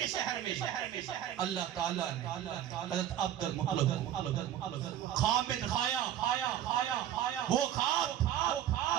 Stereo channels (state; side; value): quieter; left; 11.2 dB